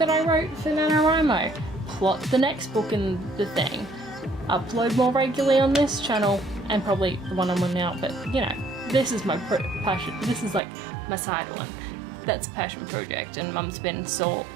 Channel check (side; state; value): left; drops out; at 10.6 s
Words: I wrote for NaNoWriMo, plot the next book in the thing, upload more regularly on this channel, and probably the one I'm on now, but you know, this is my passion, this is like my side one. That's a passion project, and Mum's been